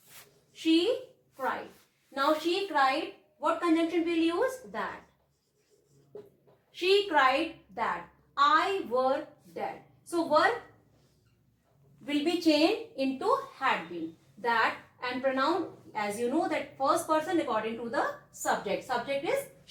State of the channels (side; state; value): both; identical; correlation 1.00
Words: she cried. Now she cried. What conjunction will use? That. She cried that I were dead. So were will be changed into had been. That, and pronoun, as you know, that first person according to the subject. Subject is